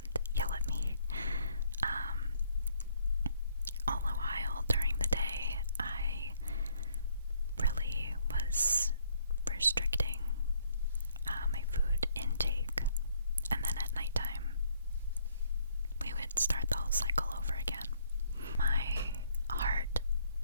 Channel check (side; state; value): both; inverted; correlation -0.67